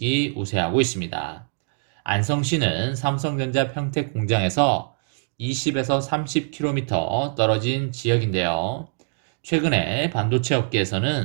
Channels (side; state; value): left; silent; 63 dB below the other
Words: 우세하고 있습니다. 안성시는 삼성전자 평택 공장에서 20에서 30km 떨어진 지역인데요.